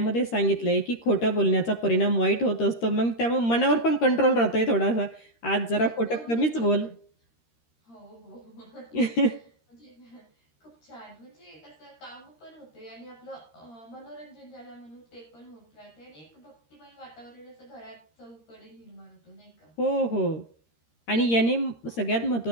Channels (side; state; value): right; late; 13 ms